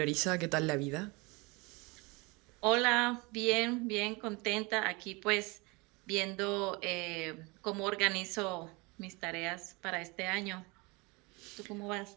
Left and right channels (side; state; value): left; quieter; 26.6 dB